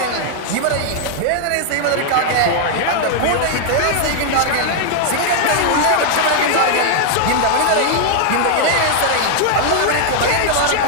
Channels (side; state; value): both; different; correlation 0.00